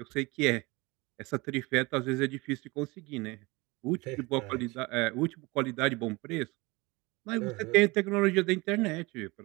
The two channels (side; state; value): left; quieter; 24.3 dB